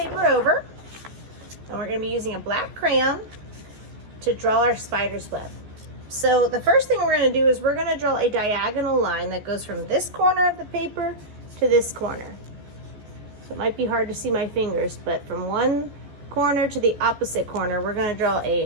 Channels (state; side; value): late; left; 14 ms